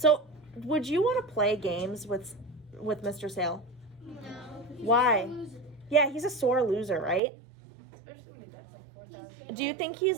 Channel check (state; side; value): drops out; left; at 7.2 s